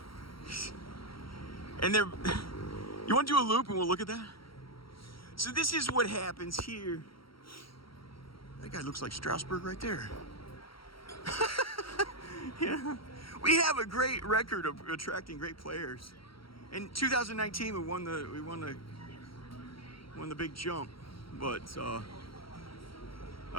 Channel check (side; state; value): right; late; 0.74 ms